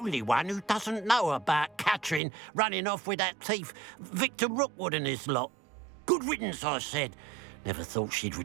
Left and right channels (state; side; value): drops out; left; at 2.2 s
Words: one who doesn't know about Catherine running off with that thief Victor Rookwood and his lot. Good riddance, I said. Never thought she'd